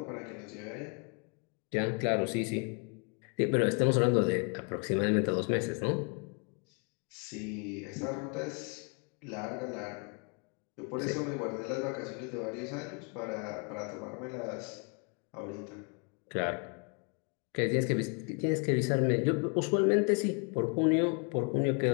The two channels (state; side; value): quieter; right; 36.0 dB